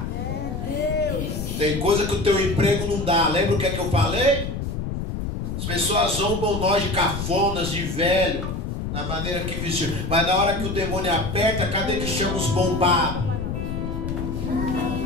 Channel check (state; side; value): noise; left; rumble, 4 dB below the sound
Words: Tem coisa que o teu emprego não dá. Lembra o que é que eu falei? As pessoas zombam nós de cafonas, de velho, na maneira que vestiu. Mas na hora que o demônio aperta, cadê que chama os bombados?